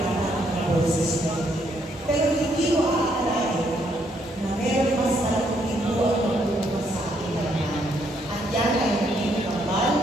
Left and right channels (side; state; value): both; normal; correlation 0.72